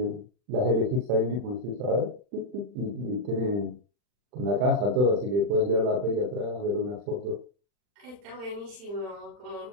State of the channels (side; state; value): left; late; 40 ms